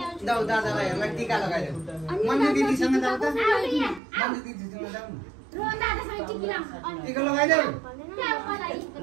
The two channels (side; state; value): left; drops out; at 4.0 s